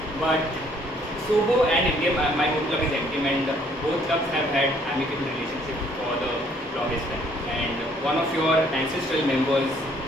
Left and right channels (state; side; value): normal; both; correlation 0.63